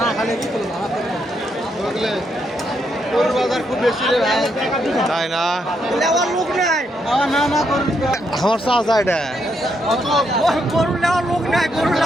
খালি বাজার খুব বেশি রে ভাই তাই না নেওয়ার লোক নাই না না করুন আমার চাচা এটা গরু নেওয়ার লোক নাই গরু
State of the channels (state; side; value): normal; both; correlation 0.78